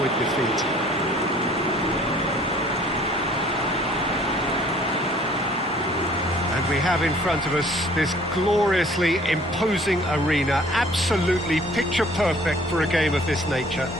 defeat. And we have in front of us this gloriously imposing arena, absolutely picture perfect for a game of this nature.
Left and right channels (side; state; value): both; normal; correlation 0.55